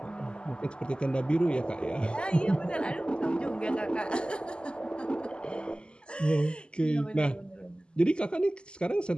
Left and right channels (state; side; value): late; right; 0.049 ms